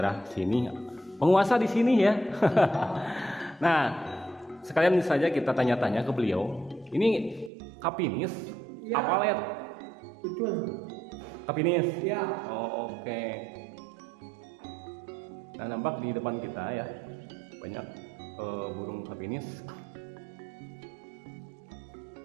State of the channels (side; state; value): left; drops out; at 7.5 s